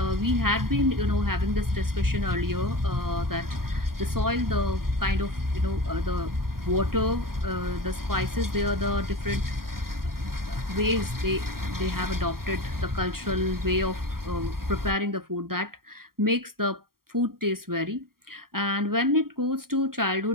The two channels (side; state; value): left; late; 0.93 ms